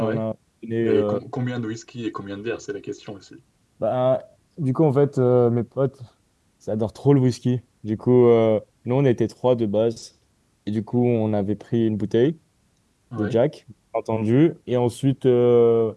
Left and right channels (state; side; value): identical; both; correlation 1.00